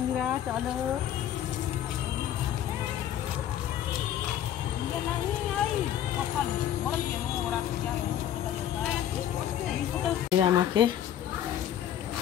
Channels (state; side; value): quieter; right; 10.9 dB